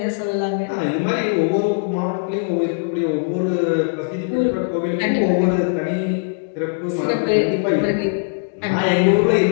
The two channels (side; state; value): right; quieter; 40.0 dB